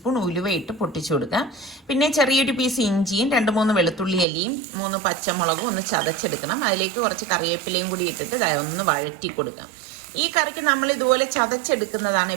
ഉലുവ ഇട്ട് പൊട്ടിച്ചു കൊടുക്കാം. പിന്നെ ചെറിയൊരു പീസ് ഇഞ്ചിയും 2-3 വെളുത്തുള്ളി അല്ലിയും 3 പച്ചമുളകും ഒന്ന് ചതച്ചെടുക്കണം. അതിലേക്ക് കുറച്ച് കറിവേപ്പിലയും കൂടി ഇട്ടിട്ട് ഒന്ന് വഴറ്റി കൊടുക്കാം. ഈ കറിക്ക് നമ്മൾ ഇതുപോലെ ചതച്ചെടുക്കുന്നതാണ്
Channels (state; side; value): drops out; left; at 4.2 s